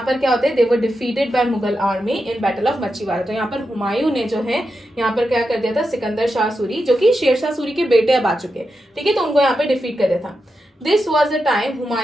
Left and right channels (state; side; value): normal; both; correlation 0.88